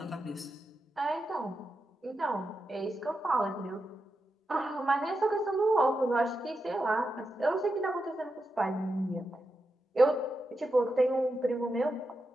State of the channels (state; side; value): normal; both; correlation 0.88